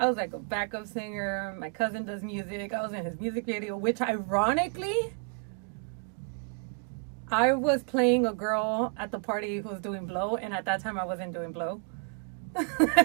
was like a backup singer. My cousin does music. I was in his music video, which ironically, I was playing a girl at the party who was doing blow, and at that time I wasn't doing blow.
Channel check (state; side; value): quieter; left; 39.6 dB